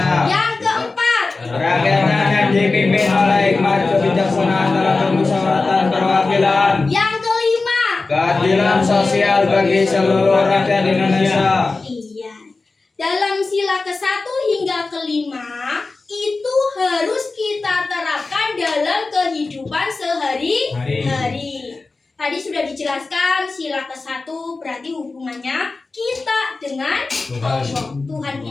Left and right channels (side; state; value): right; quieter; 3.7 dB